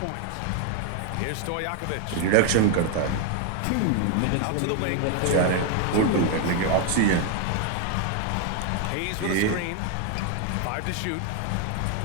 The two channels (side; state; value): both; different; correlation 0.01